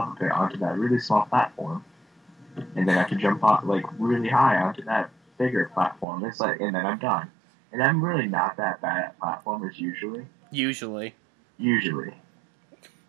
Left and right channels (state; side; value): drops out; left; at 6.1 s